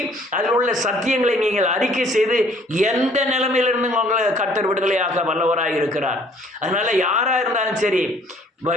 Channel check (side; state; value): both; normal; correlation 0.58